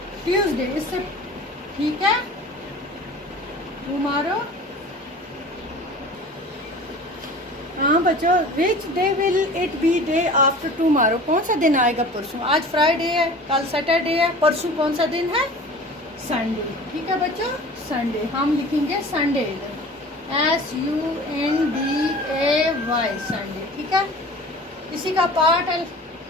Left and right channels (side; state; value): both; normal; correlation 0.41